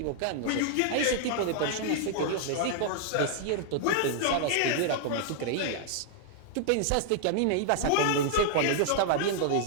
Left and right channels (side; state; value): both; different; correlation -0.01